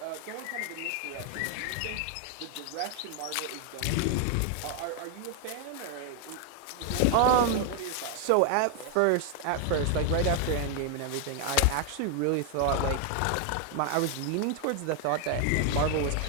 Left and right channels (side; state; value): both; different; correlation 0.00